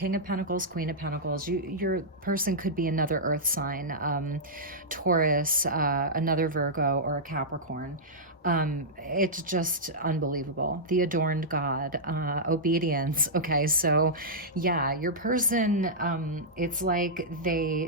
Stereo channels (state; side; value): normal; both; correlation -0.11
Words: of Pentacles, Queen of Pentacles. Your person could be another earth sign, Taurus, another Virgo, or a Capricorn. It's just unbelievable. The adorned God, obedience. Okay, so yeah, your person, it's like